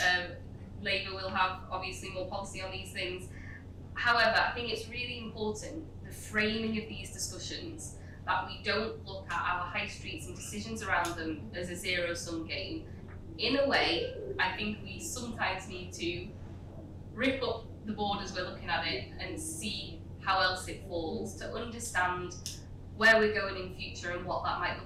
Labour will have obviously more policy on these things. However, I think it's really important, the framing of these discussions that we don't look at our high streets and decisions around them as a zero-sum game. In a way, I think we sometimes need to rip up the board as we're looking at it and see how else it falls, to understand where we're going in future and what that might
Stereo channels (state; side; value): identical; both; correlation 1.00